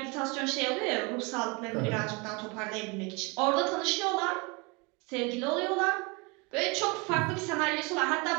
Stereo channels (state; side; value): quieter; left; 28.1 dB